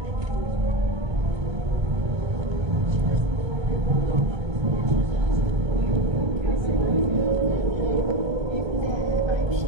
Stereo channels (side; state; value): left; late; 1.3 ms